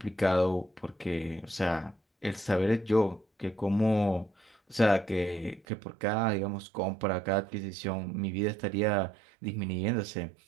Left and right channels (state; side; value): drops out; left; at 5.6 s